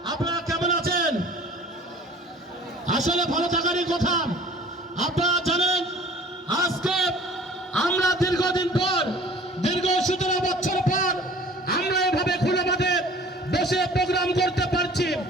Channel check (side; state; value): both; normal; correlation 0.48